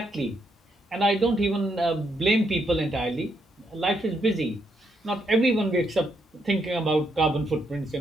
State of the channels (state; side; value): normal; both; correlation 0.77